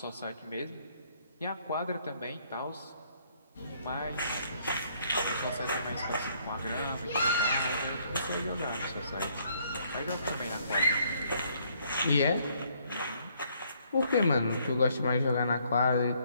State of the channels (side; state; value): both; inverted; correlation -0.67